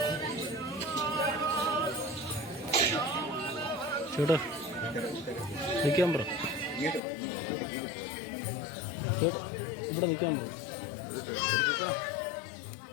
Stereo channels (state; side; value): drops out; right; at 7.0 s